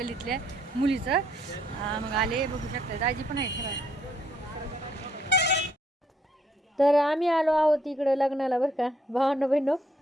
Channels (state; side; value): normal; both; correlation 0.69